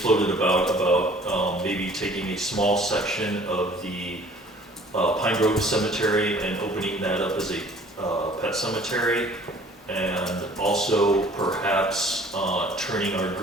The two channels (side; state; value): both; normal; correlation 0.52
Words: about maybe taking a small section of the Pine Grove Cemetery and opening that up as a pet cemetery, and also perhaps turning our